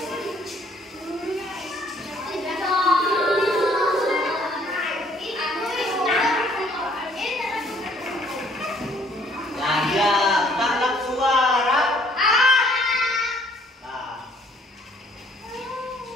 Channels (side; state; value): both; normal; correlation 0.62